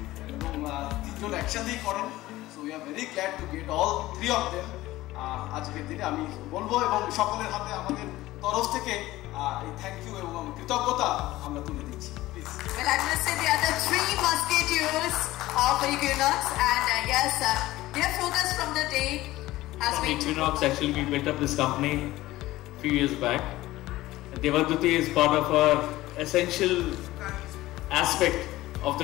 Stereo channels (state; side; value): quieter; right; 17.0 dB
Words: এবং তিনজন একসাথেই করেন। So we are very glad to get all three of them আজকের দিনে। আমি বলবো এবং সকলের হাতে আমাদের তরফ থেকে এই থ্যাংক ইউ এবং কৃতজ্ঞতা আমরা তুলে দিচ্ছি। Well, I must say the other three musketeers of Equinox, and yes, their focus from the day has been Equinox. Actually, we built up this company a few years back. Devduti is part of our essential aspect of